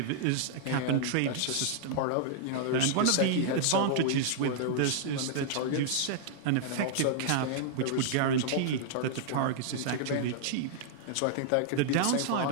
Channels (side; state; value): both; different; correlation -0.01